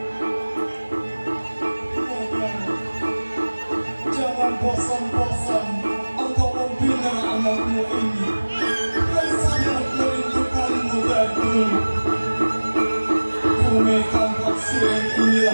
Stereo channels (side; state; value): both; inverted; correlation -1.00